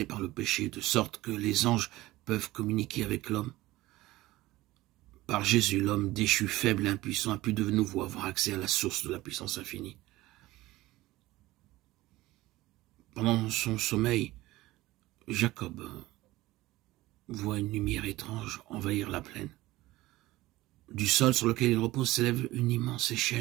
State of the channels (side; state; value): left; quieter; 18.0 dB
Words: par le péché, de sorte que les anges peuvent communiquer avec l'homme. Par Jésus, l'homme déchu, faible et impuissant a pu de nouveau avoir accès à la source de la puissance infinie. Pendant son sommeil, Jacob voit une lumière étrange envahir la plaine. Du sol sur lequel il repose s'élève une immense